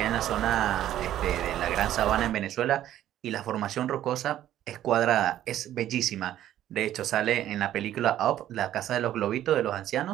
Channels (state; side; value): quieter; left; 12.3 dB